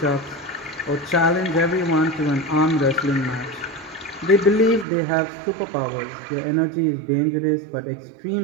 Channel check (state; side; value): drops out; left; at 4.9 s